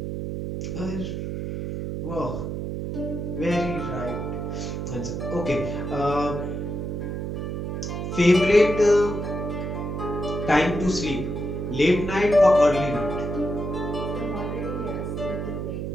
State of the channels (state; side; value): noise; right; hum, 4 dB below the sound